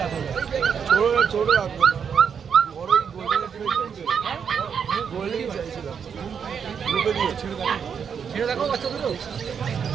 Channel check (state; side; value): quieter; left; 7.1 dB